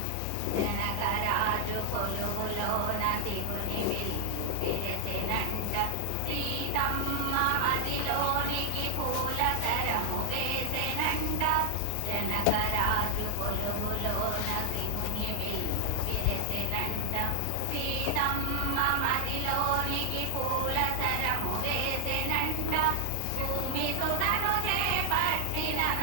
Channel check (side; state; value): both; different; correlation 0.00